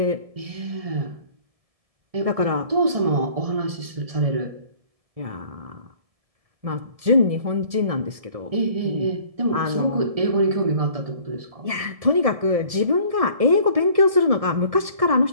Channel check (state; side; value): late; left; 1.7 ms